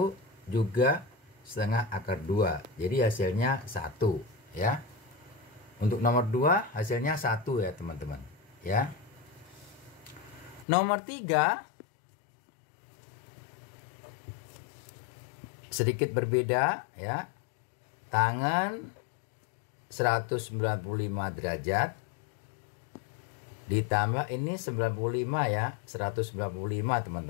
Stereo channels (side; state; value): right; drops out; at 10.7 s